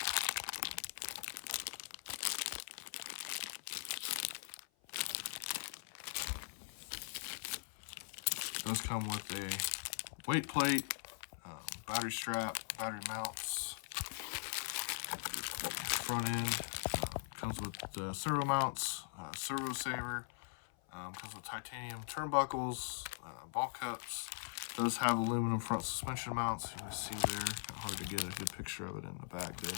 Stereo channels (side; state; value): right; silent; 50 dB below the other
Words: It does come with a weight plate, battery strap, battery mounts. Front end comes with the servo mounts, servo saver. Comes with titanium turnbuckles, ball cups. Does have aluminum front suspension mounts. You can see there. Hard to get a good picture of it in the bag there.